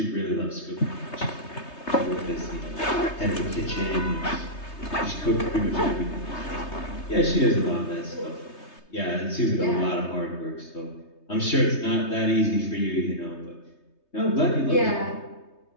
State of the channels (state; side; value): late; right; 3.2 ms